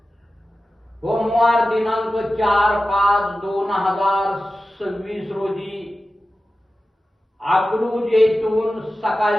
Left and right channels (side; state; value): both; normal; correlation 0.94